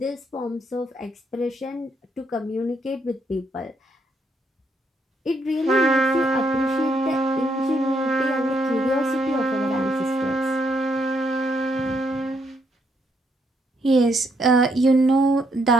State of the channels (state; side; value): normal; both; correlation 0.74